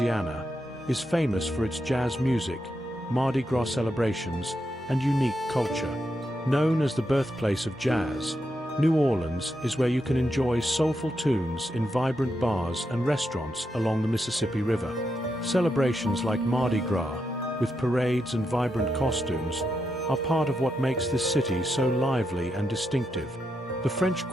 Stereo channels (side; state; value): both; normal; correlation 0.84